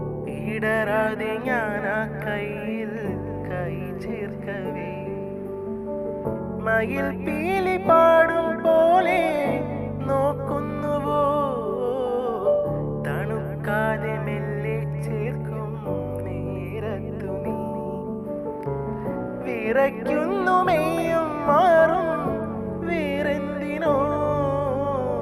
ഇടരാതെ ഞാൻ ആ കയ്യിൽ കൈ ചേർക്കവേ മയിൽ പീലി പാടും പോലെ നോക്കുന്നുവോ, തണുക്കാതെ മെല്ലെ ചേർക്കും നേരത്തു നീ വിറയ്ക്കുന്നു മെയ്യും മാറും വേറെന്തിനോ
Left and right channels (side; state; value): both; identical; correlation 1.00